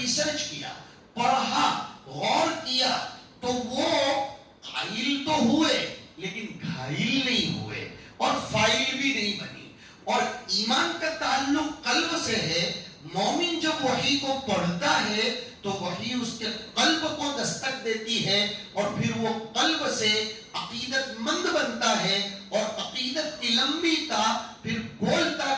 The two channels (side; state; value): both; identical; correlation 1.00